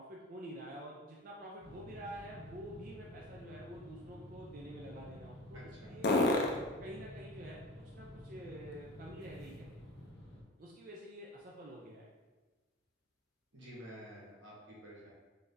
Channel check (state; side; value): normal; both; correlation 0.36